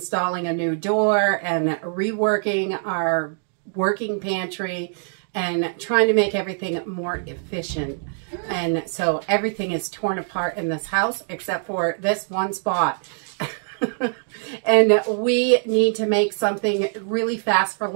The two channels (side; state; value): left; silent; digital silence